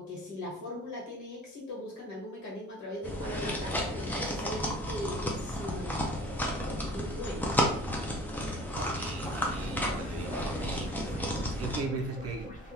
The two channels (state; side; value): normal; both; correlation 0.47